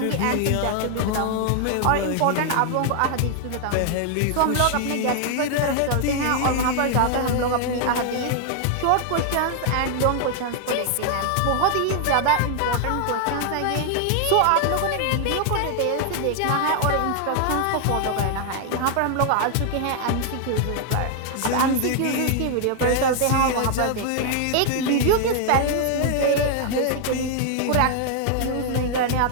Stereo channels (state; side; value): different; both; correlation 0.00